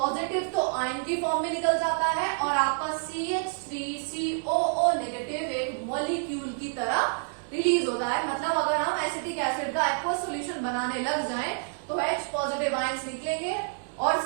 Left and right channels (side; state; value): left; silent; digital silence